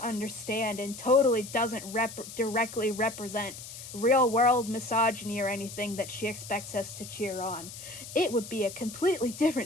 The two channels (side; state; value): left; noise; hiss, 12 dB below the sound